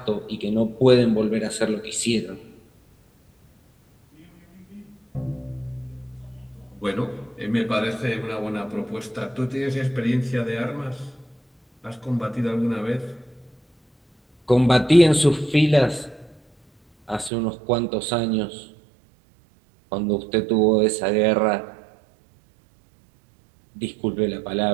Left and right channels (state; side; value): drops out; left; at 17.3 s